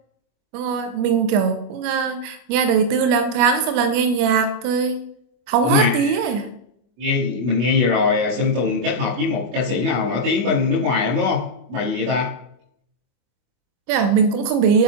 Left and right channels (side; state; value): left; late; 25 ms